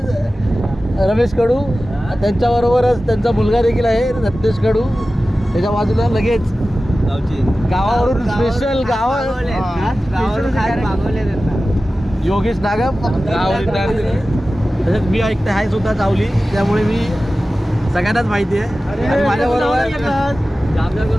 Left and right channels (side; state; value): both; normal; correlation 0.95